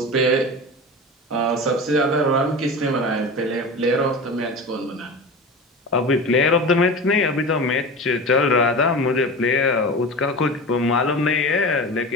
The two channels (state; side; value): normal; both; correlation 0.30